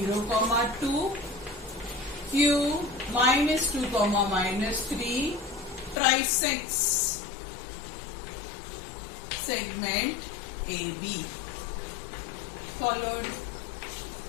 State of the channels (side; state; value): right; drops out; at 6.0 s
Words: comma 2, Q minus 2 comma minus 3 trisects segment AB. Followed?